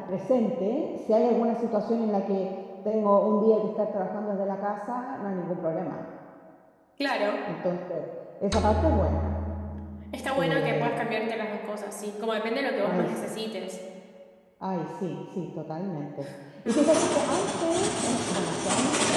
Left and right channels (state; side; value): identical; both; correlation 1.00